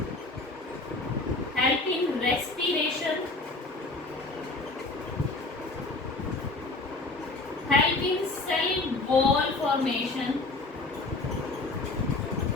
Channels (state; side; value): quieter; right; 3.3 dB